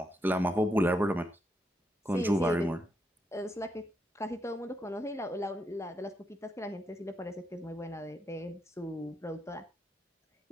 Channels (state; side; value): normal; both; correlation 0.81